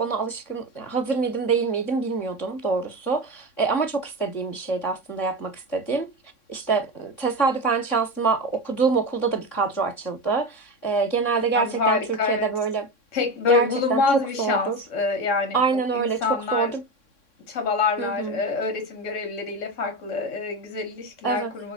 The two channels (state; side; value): late; right; 3.6 ms